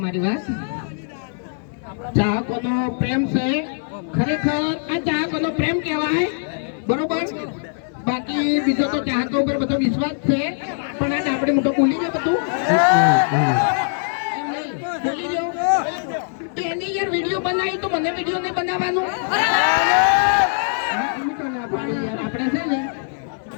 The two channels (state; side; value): silent; right; 59 dB below the other